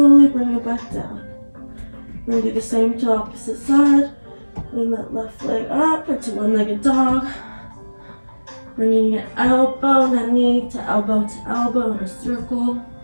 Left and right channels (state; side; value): inverted; both; correlation -1.00